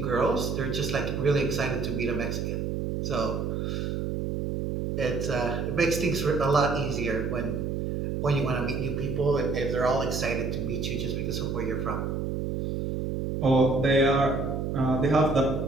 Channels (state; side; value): noise; right; hum, 2 dB below the sound